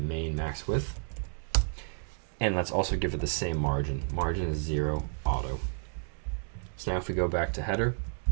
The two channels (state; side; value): silent; left; 57 dB below the other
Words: main max width. And let's also give it the same margin. Margin is 0 auto. So now if we go back to header,